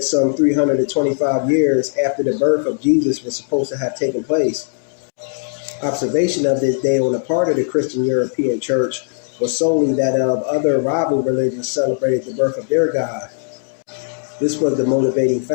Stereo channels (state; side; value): silent; right; digital silence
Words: some 325 years after the birth of Jesus was supposed to have taken place. Observation of this day on the part of the Christian European Church was solely that of other rival religions celebrated the birth of their God. This was the motivating